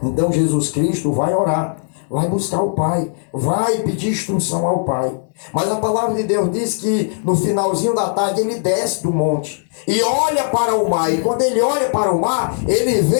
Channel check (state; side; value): silent; right; 64 dB below the other